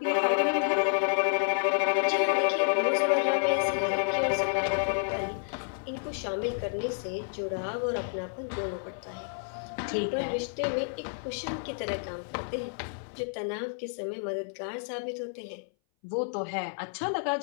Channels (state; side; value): silent; right; 58 dB below the other